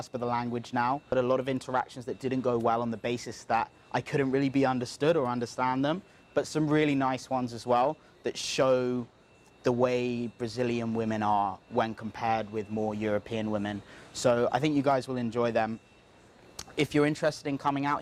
of the language now. But a lot of interactions that didn't go well on the basis that I couldn't really be understood or understand them, but some really nice ones as well that show the way Brazilian women are when compared with more European women. So I think you guys will enjoy them. If you're interested in coming out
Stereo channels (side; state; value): both; identical; correlation 1.00